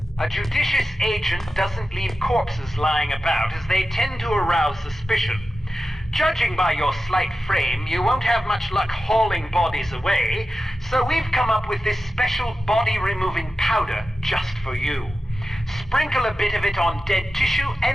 A judicious agent doesn't leave corpses lying about, as they tend to arouse suspicion. Judging by your slight frame, you won't have much luck hauling bodies away, so we've come up with this special body-removing powder just for you. Sprinkle a bit of it on dead tissue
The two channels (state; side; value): normal; both; correlation 0.92